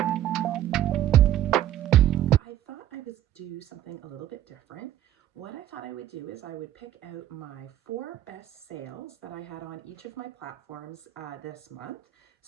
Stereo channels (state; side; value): quieter; left; 12.3 dB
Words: I thought I would do something a little bit different. What I thought I would do is I would pick out my 4 best sales that I had on each of my platforms this month.